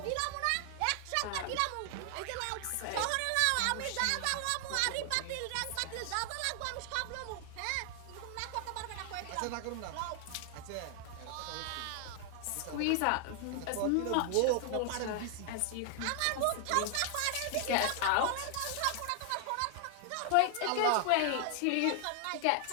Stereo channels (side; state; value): both; different; correlation 0.00